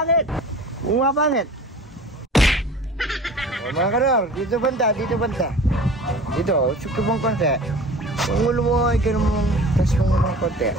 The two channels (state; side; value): normal; both; correlation 0.41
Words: Pumapangit. O, mga kanor, dito banda. Dito, suki mong konti. Yung ulo mo, ikaw mong tas mong konti.